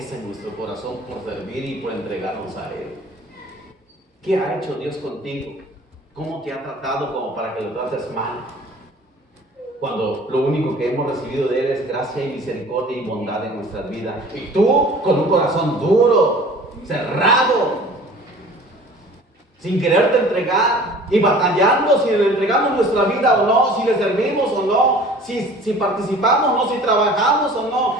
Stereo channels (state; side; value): normal; both; correlation 0.46